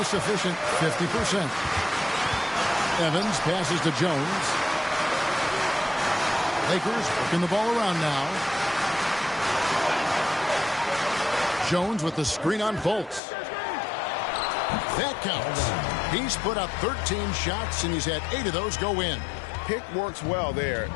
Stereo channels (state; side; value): drops out; right; at 13.2 s